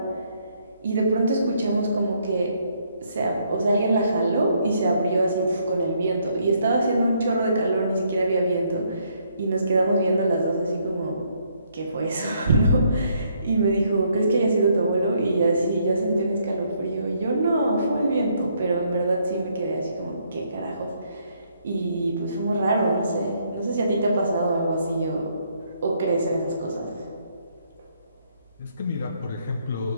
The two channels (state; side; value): inverted; both; correlation -0.71